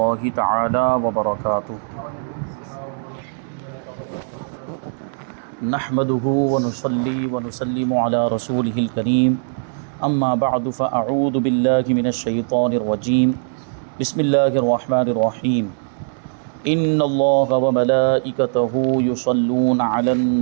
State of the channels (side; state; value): left; silent; digital silence